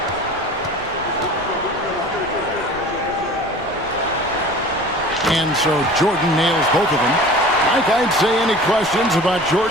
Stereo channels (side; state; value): left; noise; rumble, 19 dB below the sound